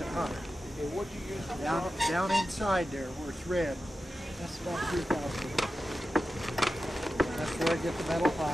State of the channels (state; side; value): normal; both; correlation 0.92